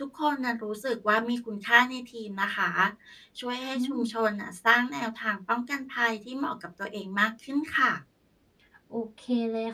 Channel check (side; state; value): both; identical; correlation 1.00